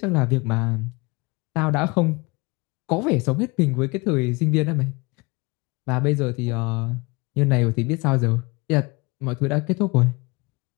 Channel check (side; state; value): right; quieter; 26.0 dB